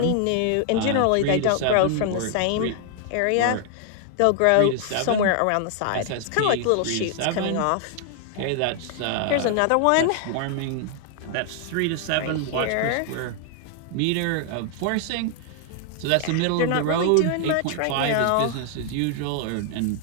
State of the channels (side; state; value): both; different; correlation 0.00